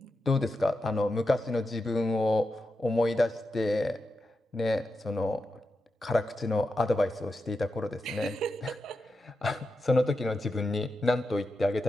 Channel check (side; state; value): both; normal; correlation 0.89